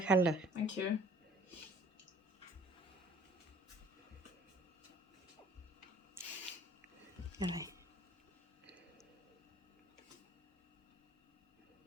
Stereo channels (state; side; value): normal; both; correlation 0.53